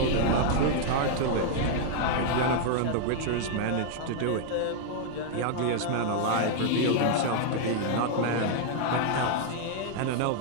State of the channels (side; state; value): both; different; correlation 0.00